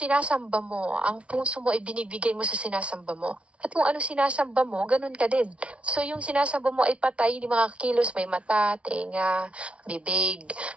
mo, ang puso mo ay binibigay mo sa sinasamba mo. At kung ano sinasamba mo, ganun ka din. So yung sinasamba mo ay patay, hindi makakilos, may mata, tenga, bibig.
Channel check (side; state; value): left; late; 0.061 ms